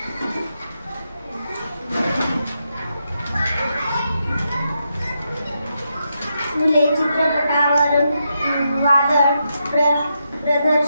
फुले चित्रपटावरून वादळ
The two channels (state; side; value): inverted; both; correlation -0.83